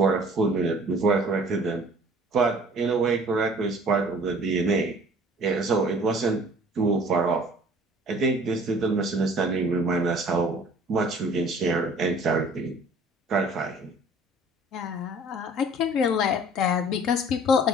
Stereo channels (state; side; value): normal; both; correlation 0.51